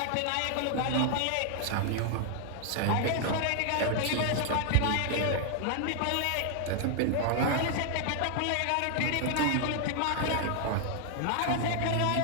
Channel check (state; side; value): different; both; correlation 0.00